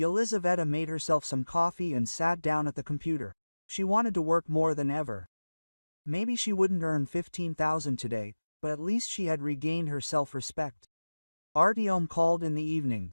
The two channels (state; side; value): inverted; both; correlation -1.00